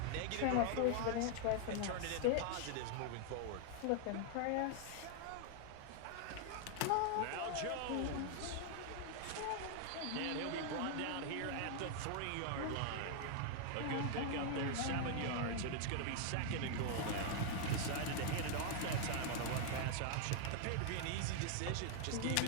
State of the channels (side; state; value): both; different; correlation 0.00